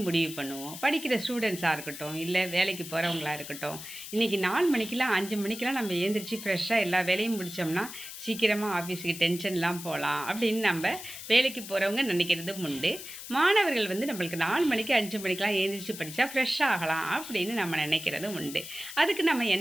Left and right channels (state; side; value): noise; left; hiss, 11 dB below the sound